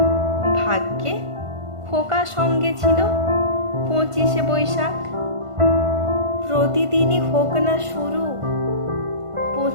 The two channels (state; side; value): late; left; 1.5 ms